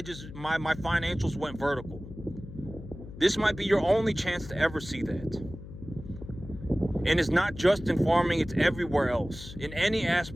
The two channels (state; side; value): noise; left; hum, 14 dB below the sound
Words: financials went vertical. This might be your only chance to ever see that. And it's not just in farming, it's everywhere else. In any